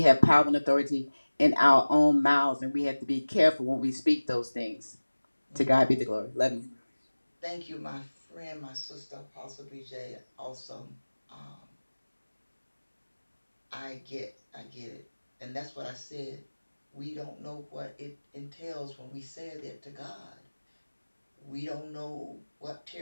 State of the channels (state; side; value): inverted; both; correlation -1.00